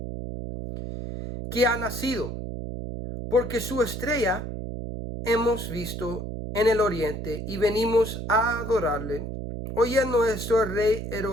Que ha nacido, porque su estrella hemos visto en el oriente y venimos a adorarle. Oyendo esto, el rey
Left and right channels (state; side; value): noise; right; hum, 6 dB below the sound